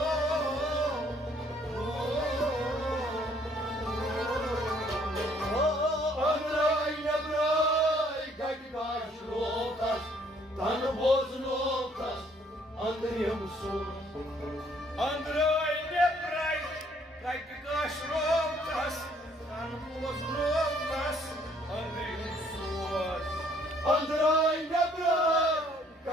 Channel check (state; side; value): normal; both; correlation 0.64